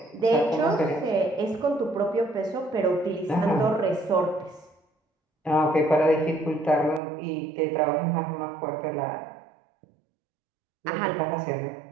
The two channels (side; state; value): left; drops out; at 7.0 s